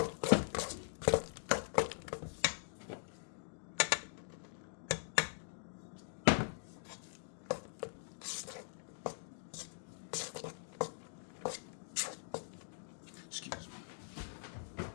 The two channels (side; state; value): right; silent; digital silence